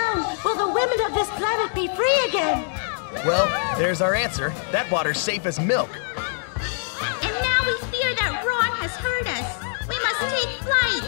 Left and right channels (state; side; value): silent; right; 63 dB below the other